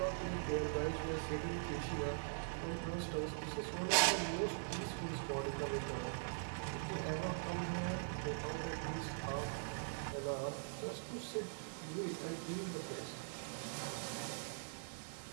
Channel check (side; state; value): left; silent; digital silence